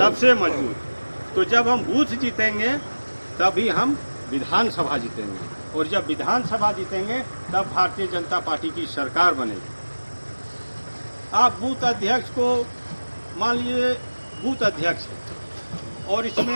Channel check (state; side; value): inverted; both; correlation -1.00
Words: सबसे मजबूत। तो जब हम बूथ जीतेंगे तभी हम विधानसभा जीतेंगे, और जब विधानसभा जीतेंगे तब भारतीय जनता पार्टी की सरकार बनेगी। आप बूथ अध्यक्ष को मान लीजिए बूथ अध्यक्ष है और